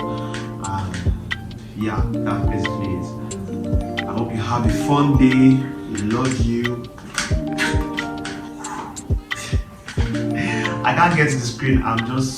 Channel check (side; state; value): both; identical; correlation 1.00